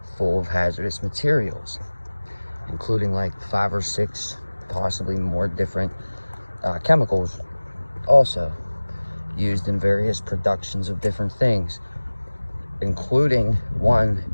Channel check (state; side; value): inverted; both; correlation -1.00